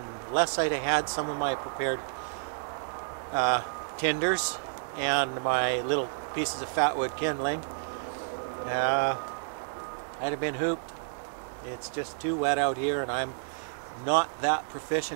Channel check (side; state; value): left; silent; digital silence